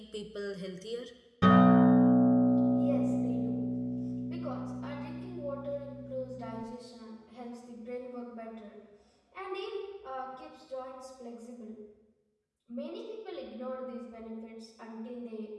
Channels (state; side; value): identical; both; correlation 1.00